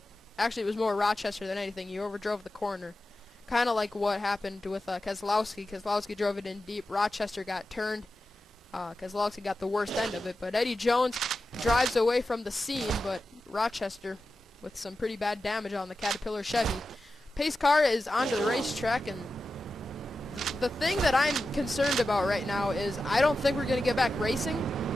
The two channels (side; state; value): both; normal; correlation 0.92